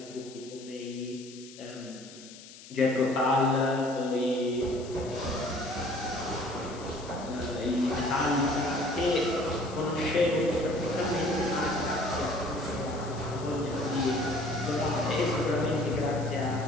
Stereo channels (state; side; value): noise; left; hiss, 18 dB below the sound